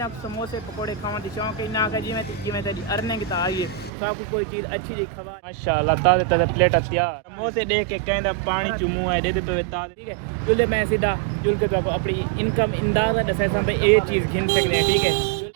समोसे पकौड़े खावन दी शौक है ना जिवें तेरी अर्निंग ता आई है सब कोई चीज़ अच्छी जी खवा माशाल्लाह ताज़े प्लेट तैयार समोसे देख के कहंदा पानी चुमू है दे पे ताज़े ठीक है जुले मैं सीधा जुल के तो अपनी इनकम अंदाजा दसा सा भाई ये चीज़ गिन सकते हैं ठीक है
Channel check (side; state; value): left; drops out; at 3.9 s